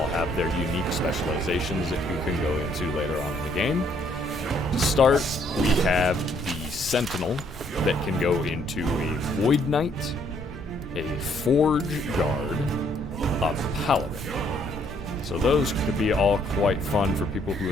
have their unique specializations that you can go into later on in the game. To start, we have the Sentinel that can go into a Void Knight, a Forge Guard, a Paladin. So those could be all quite fun for people who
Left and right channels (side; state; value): both; normal; correlation 0.67